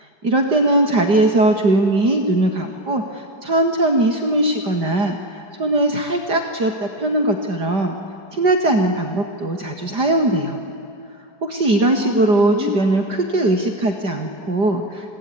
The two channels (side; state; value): left; late; 5.0 ms